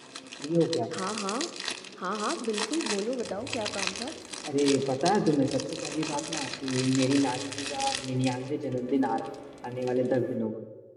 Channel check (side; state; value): both; identical; correlation 1.00